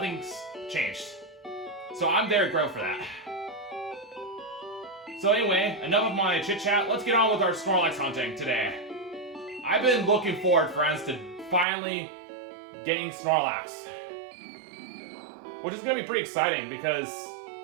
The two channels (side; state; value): left; drops out; at 11.7 s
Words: changed. So I'm very grateful for that. So anyway, enough of my chit-chat. Let's get on with our Snorlax hunting today. I've been looking forward, friends, to finally getting Snorlax, which is going to be pretty exciting because